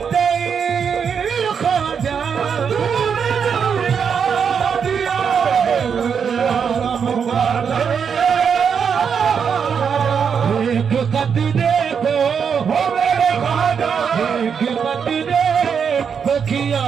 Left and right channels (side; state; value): left; quieter; 6.8 dB